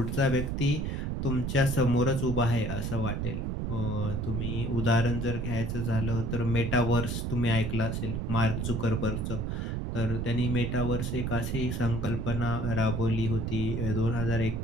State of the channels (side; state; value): right; noise; rumble, 2 dB below the sound